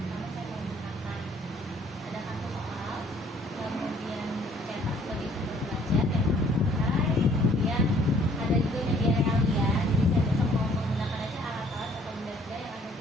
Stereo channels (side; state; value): both; normal; correlation 0.59